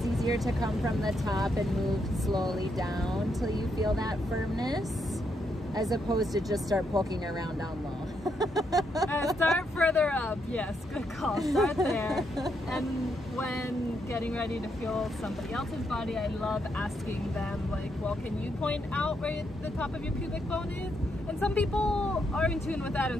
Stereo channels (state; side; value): normal; both; correlation 0.78